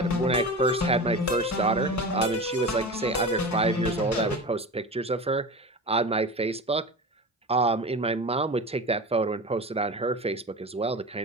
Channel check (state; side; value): normal; both; correlation 0.29